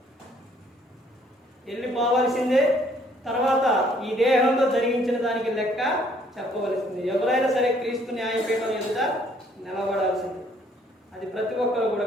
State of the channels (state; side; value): normal; both; correlation 0.63